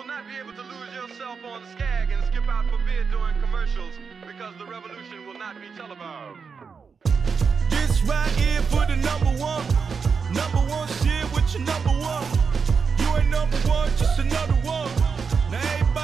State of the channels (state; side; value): quieter; left; 5.6 dB